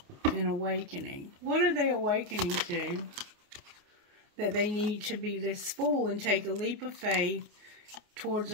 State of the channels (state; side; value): late; left; 29 ms